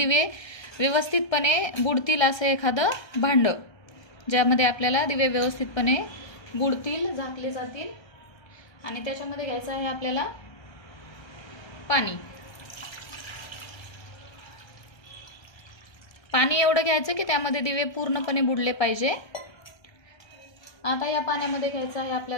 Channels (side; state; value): right; late; 1.3 ms